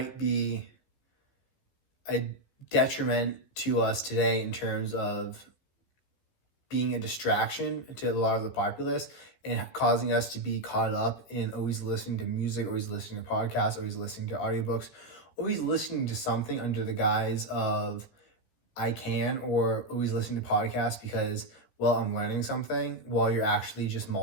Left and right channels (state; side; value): late; right; 14 ms